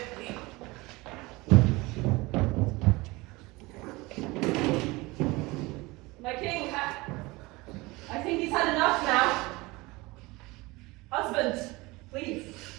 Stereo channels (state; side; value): quieter; left; 22.5 dB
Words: My king, I think he's had enough now. Husband, please.